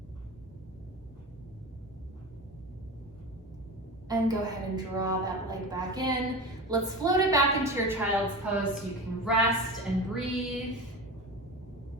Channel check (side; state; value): both; normal; correlation 0.28